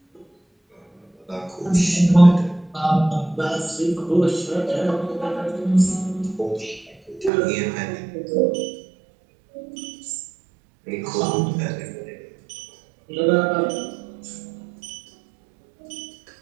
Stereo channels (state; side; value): drops out; left; at 7.3 s